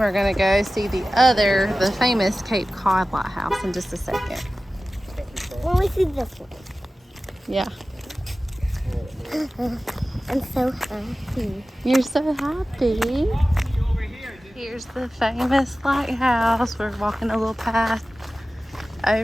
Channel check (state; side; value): normal; both; correlation 0.96